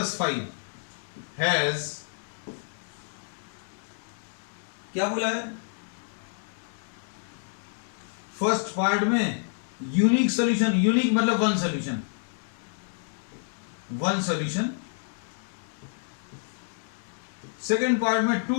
5 has, क्या बोला है? फर्स्ट पार्ट में यूनिक सॉल्यूशन, यूनिक मतलब one solution, one solution. Second part में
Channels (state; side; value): silent; right; digital silence